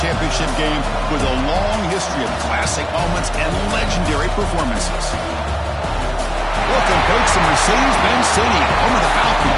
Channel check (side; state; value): both; identical; correlation 1.00